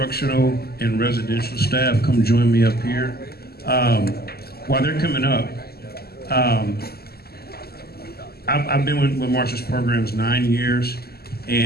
and residential staff come join me up here. While they're coming up, I've been with Marshall's programs 9 years,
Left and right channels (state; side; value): late; right; 0.46 ms